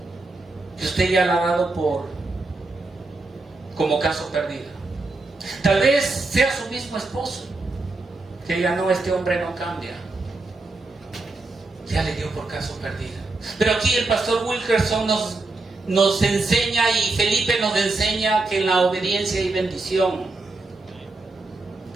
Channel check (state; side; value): quieter; left; 3.3 dB